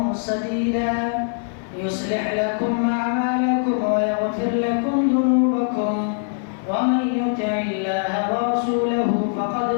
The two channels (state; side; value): silent; right; digital silence